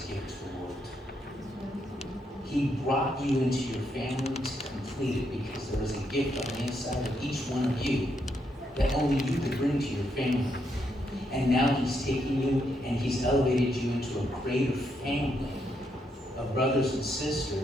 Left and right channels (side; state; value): both; normal; correlation 0.78